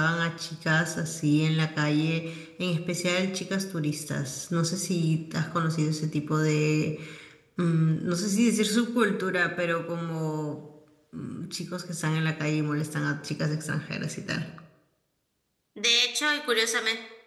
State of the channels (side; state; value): both; identical; correlation 1.00